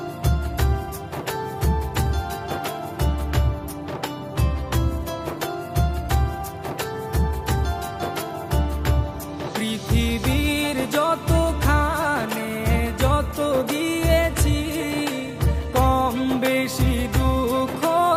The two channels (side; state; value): both; identical; correlation 1.00